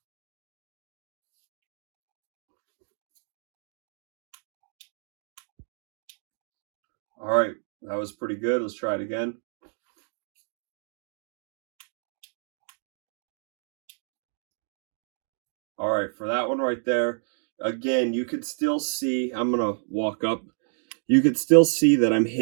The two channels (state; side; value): silent; left; digital silence